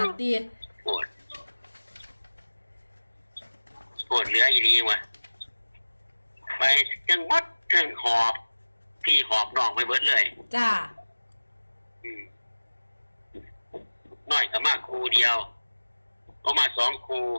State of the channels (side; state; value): both; inverted; correlation -1.00